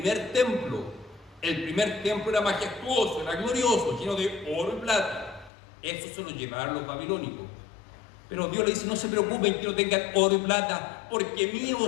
templo. El primer templo era majestuoso, era glorioso, lleno de oro y plata. Eso se lo llevaron los babilónicos. Pero Dios le dice, no se preocupen que no tengan oro y plata, porque mío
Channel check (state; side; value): drops out; right; at 5.5 s